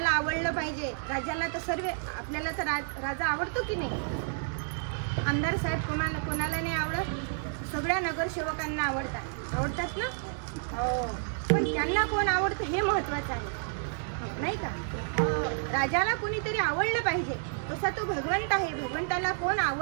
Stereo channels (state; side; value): silent; left; digital silence